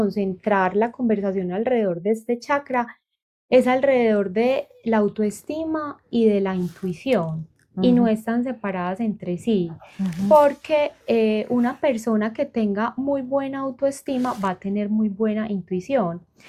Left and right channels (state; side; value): identical; both; correlation 1.00